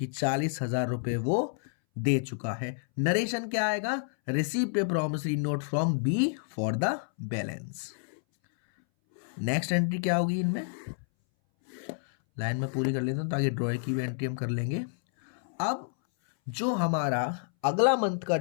40,000 रुपए वो दे चुका है। नरेशन क्या आएगा, received a promissory note from B for the balance. Next entry क्या होगी, इनमें लाइन में पूरी कर लेता हूं ताकि ड्रॉ की भी एंट्री हम कर लेंगे। अब जो हमारा अगला मंथ का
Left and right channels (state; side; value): silent; right; 58 dB below the other